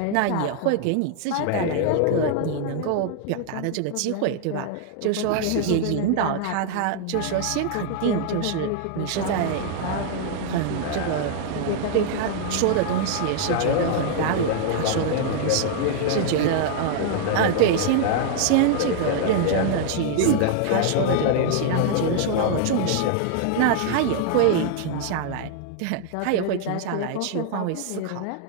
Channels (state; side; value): different; both; correlation 0.00